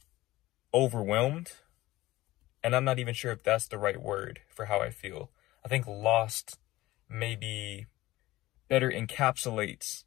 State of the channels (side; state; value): right; quieter; 17.4 dB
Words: overwhelmed, and I'm not even sure if that's the right word for how I feel. I think lost maybe better encapsulates